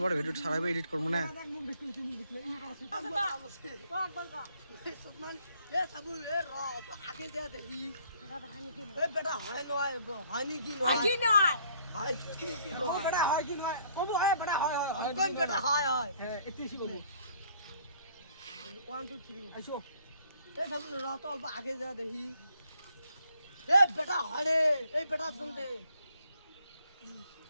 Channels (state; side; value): inverted; both; correlation -0.63